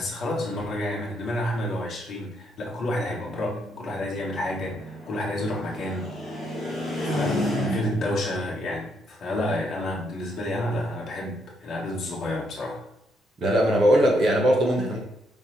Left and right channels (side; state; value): both; normal; correlation 0.75